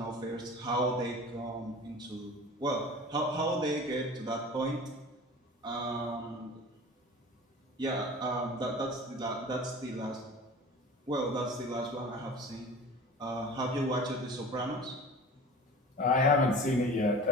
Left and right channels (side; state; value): both; normal; correlation 0.39